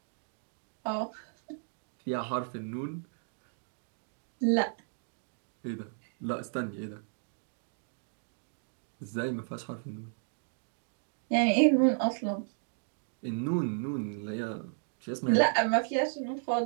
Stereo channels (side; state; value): left; silent; digital silence